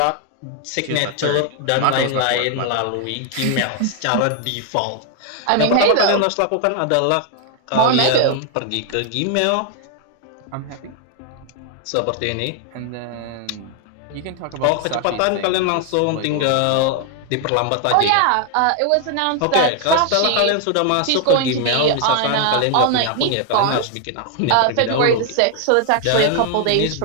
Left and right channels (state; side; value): different; both; correlation 0.00